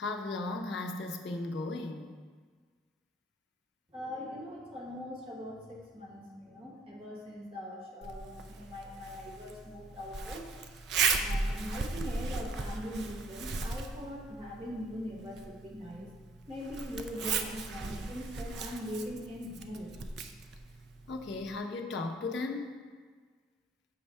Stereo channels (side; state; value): both; normal; correlation 0.58